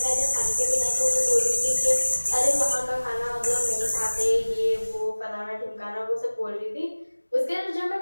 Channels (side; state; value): both; inverted; correlation -1.00